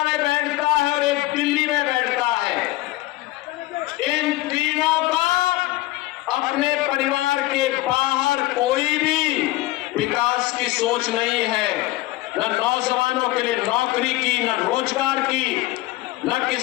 में बैठता है और एक दिल्ली में बैठता है। इन तीनों का अपने परिवार के बाहर कोई भी विकास की सोच नहीं है। न नौजवानों के लिए नौकरी की, न रोजगार की, न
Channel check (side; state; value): right; quieter; 18.0 dB